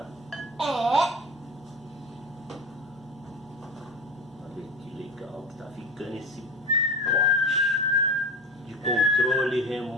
É. Olha que legal que tá ficando esse pote de controle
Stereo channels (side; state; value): both; normal; correlation 0.30